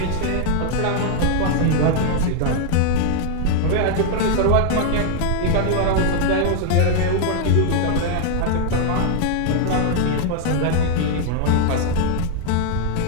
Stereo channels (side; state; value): both; different; correlation 0.00